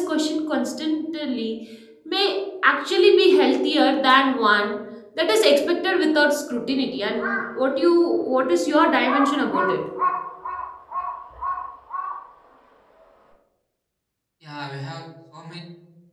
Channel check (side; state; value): both; identical; correlation 1.00